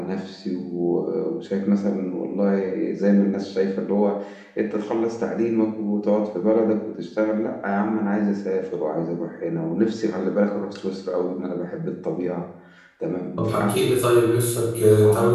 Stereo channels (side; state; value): both; identical; correlation 1.00